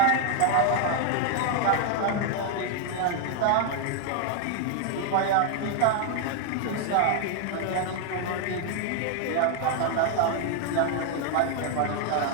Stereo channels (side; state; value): both; different; correlation 0.00